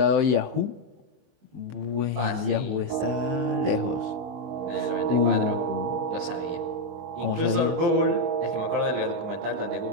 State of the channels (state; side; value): late; left; 23 ms